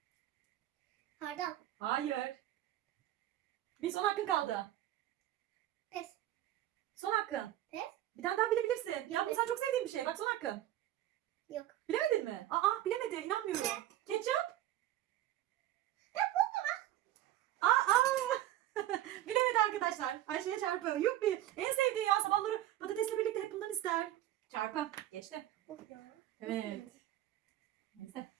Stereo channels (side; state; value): left; quieter; 13.8 dB